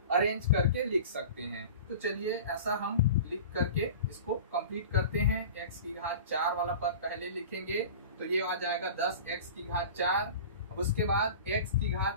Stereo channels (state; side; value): inverted; both; correlation -0.37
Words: अरेंज करके लिख सकते हैं। तो चलिए ऐसा हम लिख करके इसको कंप्लीट करते हैं। x की घात 4 वाला पद पहले लिखेंगे तो ये आ जाएगा 10x की घात 4। अब उसके बाद x की